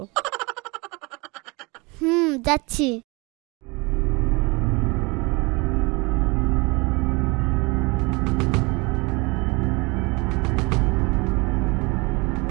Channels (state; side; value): quieter; left; 26.8 dB